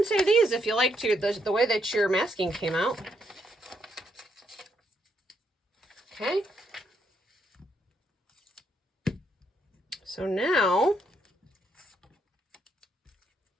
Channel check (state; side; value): normal; both; correlation 0.76